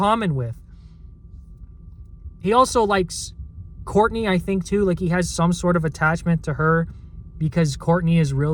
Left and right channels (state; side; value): identical; both; correlation 1.00